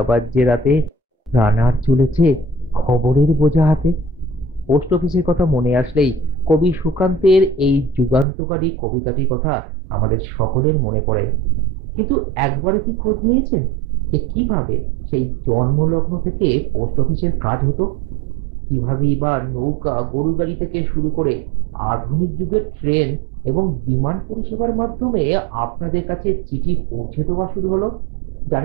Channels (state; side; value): drops out; left; at 8.2 s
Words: বাজছে রাতে। রানার চলেছে খবরের বোঝা হাতে। পোস্ট অফিসের কথা মনে আসলেই কবি সুকান্তের এই যুগান্তকারী কবিতাটির কথা আমাদের সকলের মনে পড়ে। কিন্তু একবারে কি খোঁজ নিয়েছেন যে কিভাবে সেই জন্মলগ্ন থেকে পোস্ট অফিসের কাজ হতো? কিভাবেই বা নৌকা, গরু গাড়ি থেকে শুরু করে আধুনিক যুগের ট্রেন এবং বিমান পরিষেবার মাধ্যমে আপনাদের কাছে চিঠি পৌঁছে দেওয়া শুরু হলো?